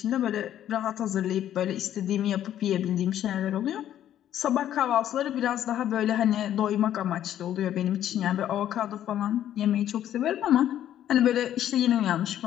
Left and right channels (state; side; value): quieter; right; 11.3 dB